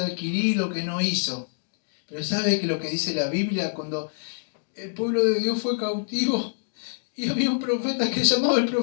adquirir, lo que no hizo. Pero sabe que lo que dice la Biblia, cuando el pueblo de Dios fue cautivo y había un profeta que se llamaba el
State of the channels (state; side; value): silent; right; digital silence